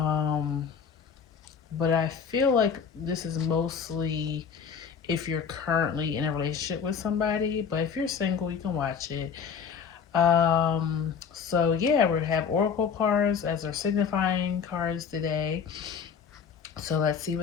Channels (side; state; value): right; quieter; 6.8 dB